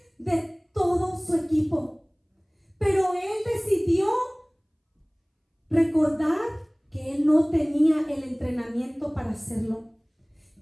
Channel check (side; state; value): both; identical; correlation 1.00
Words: de todo su equipo. Pero él decidió recordar que él no tenía el entrenamiento para hacerlo,